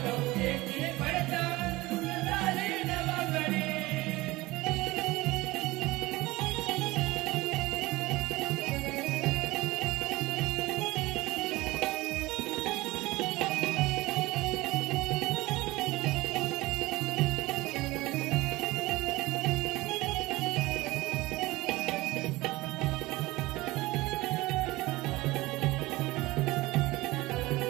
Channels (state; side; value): quieter; left; 19.8 dB